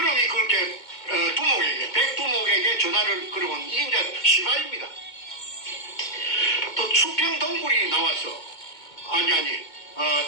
그렇게 백두목에게 전화를 걸어온 이게 이제 시발입니다. 또 수평 동굴이 나와서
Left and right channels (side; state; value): right; late; 2.2 ms